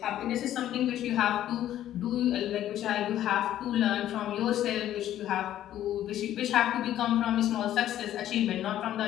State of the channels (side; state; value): right; quieter; 12.2 dB